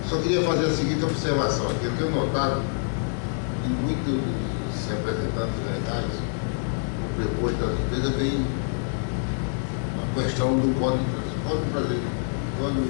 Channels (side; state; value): right; silent; digital silence